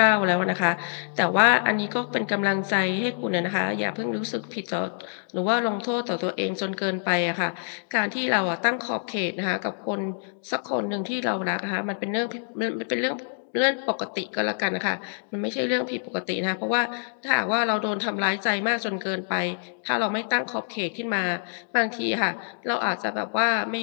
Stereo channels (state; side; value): silent; right; digital silence